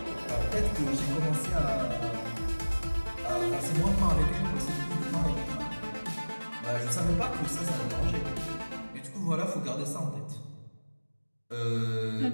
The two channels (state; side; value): inverted; both; correlation -1.00